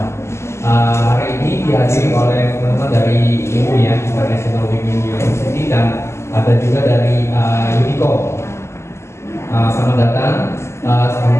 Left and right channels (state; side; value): late; right; 0.13 ms